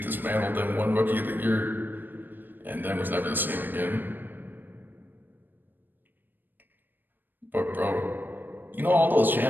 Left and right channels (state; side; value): late; left; 0.092 ms